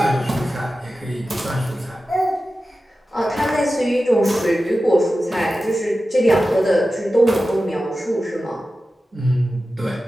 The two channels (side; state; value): both; normal; correlation 0.94